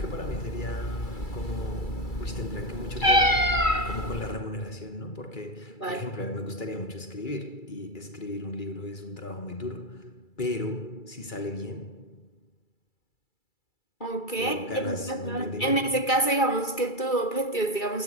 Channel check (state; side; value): late; right; 2.3 ms